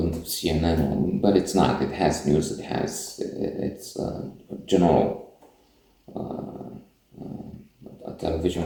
of CNN, but it's not. It has news. It's general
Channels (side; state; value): both; identical; correlation 1.00